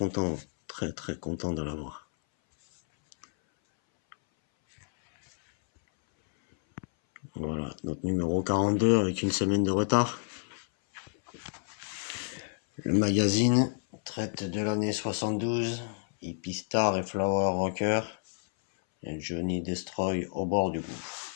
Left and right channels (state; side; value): silent; right; 58 dB below the other